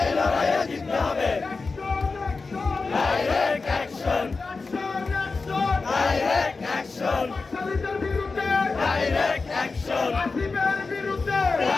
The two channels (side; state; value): right; quieter; 4.1 dB